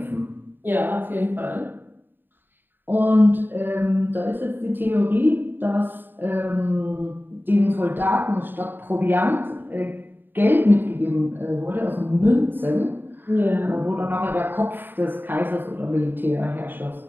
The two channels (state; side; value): late; left; 0.094 ms